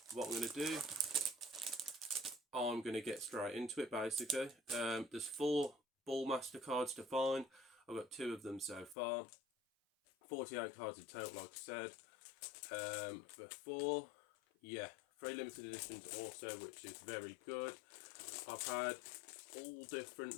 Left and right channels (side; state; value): right; drops out; at 9.0 s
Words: what I'm going to do, I'm going to get straight into it basically. There's 4 Ballmaster cards to find. I've got 2 of them so far. 48 cards in total, like I said. Before, yeah, 3 limited editions also, which is very good. I've had all different